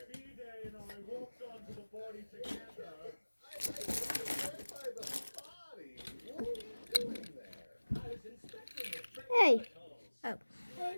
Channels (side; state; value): both; inverted; correlation -1.00